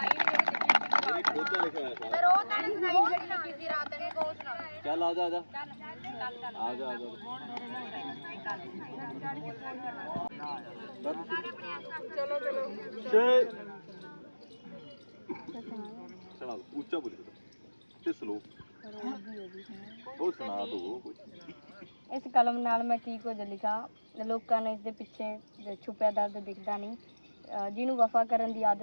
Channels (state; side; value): inverted; both; correlation -1.00